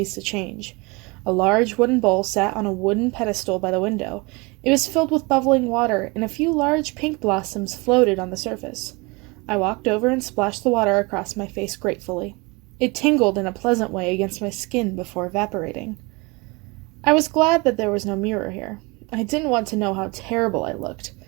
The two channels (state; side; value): quieter; left; 26.8 dB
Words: to change. A large wooden bowl sat on a wooden pedestal by the window. It was filled with bubbling water, and a few large pink blossoms floated on the surface. I walked over and splashed the water across my face gratefully. It tingled in a pleasant way against my skin before evaporating. I was glad that there was no mirror here. I didn't want to know how terrible I looked.